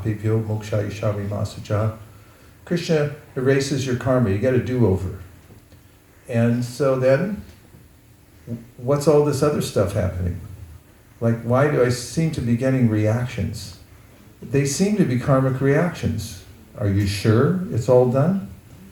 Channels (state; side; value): identical; both; correlation 1.00